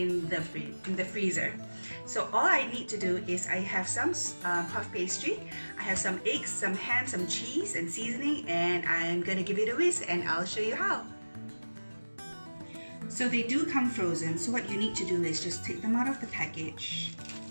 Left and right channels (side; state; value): both; inverted; correlation -1.00